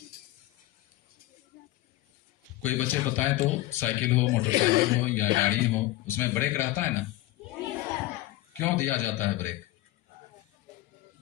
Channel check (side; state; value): right; quieter; 16.8 dB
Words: कोई बच्चे बताएं तो साइकिल हो, मोटरसाइकिल हो या गाड़ी हो, उसमें ब्रेक रहता है ना? क्यों दिया जाता है ब्रेक?